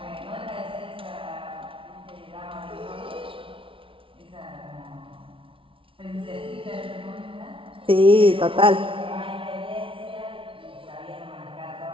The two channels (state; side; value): late; left; 0.25 ms